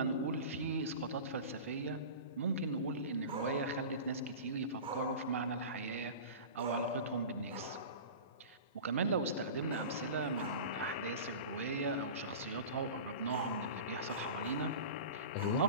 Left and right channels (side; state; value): both; inverted; correlation -0.33